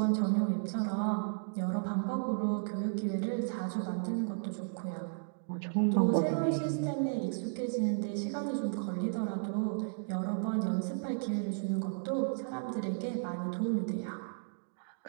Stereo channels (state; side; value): silent; left; digital silence